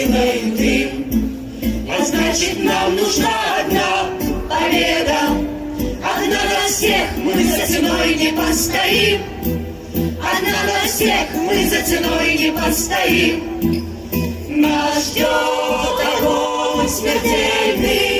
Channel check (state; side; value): identical; both; correlation 1.00